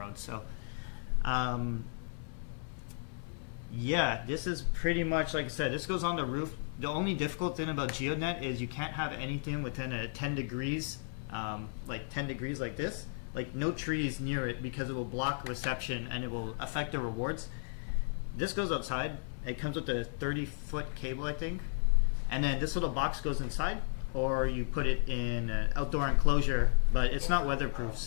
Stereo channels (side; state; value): right; silent; 55 dB below the other